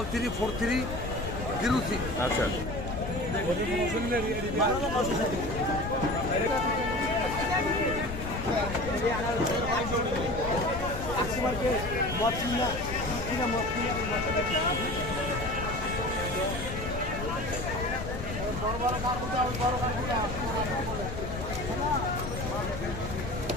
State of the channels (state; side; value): noise; left; rumble, 6 dB below the sound